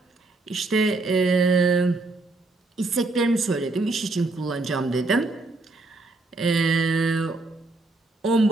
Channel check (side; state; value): left; quieter; 3.2 dB